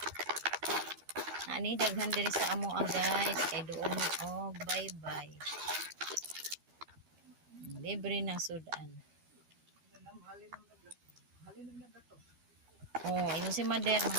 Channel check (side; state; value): left; late; 13 ms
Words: Naani daghan diri sa amo guys. Kay doon oh, bye bye. Libre ng sudan. Oh, ino si Mader,